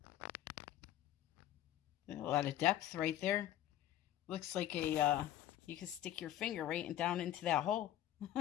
A lot of depth right there. Looks like a you can stick your finger right down into that hole.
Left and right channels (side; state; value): right; quieter; 12.6 dB